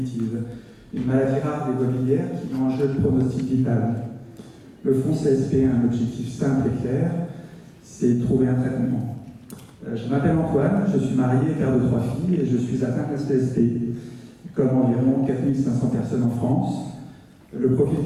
une maladie rare des voies biliaires qui met en jeu le pronostic vital. Le fonds CSP a un objectif simple et clair, c'est trouver un traitement. Je m'appelle Antoine, je suis marié et père de 3 filles et je suis atteint de CSP, comme environ 4500 personnes en France. Le profil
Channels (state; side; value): identical; both; correlation 1.00